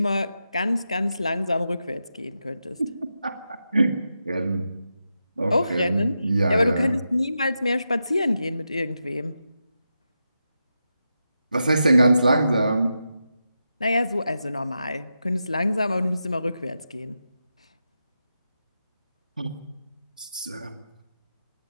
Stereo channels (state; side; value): inverted; both; correlation -0.88